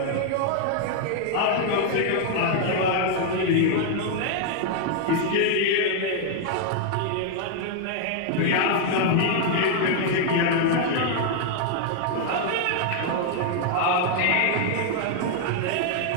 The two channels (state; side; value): different; both; correlation 0.00